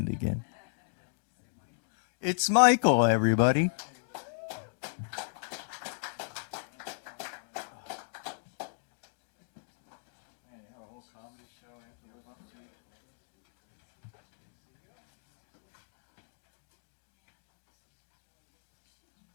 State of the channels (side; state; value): right; silent; digital silence